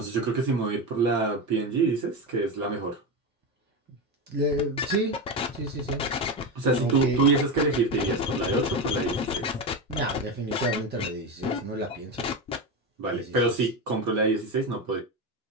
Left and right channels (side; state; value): both; normal; correlation 0.17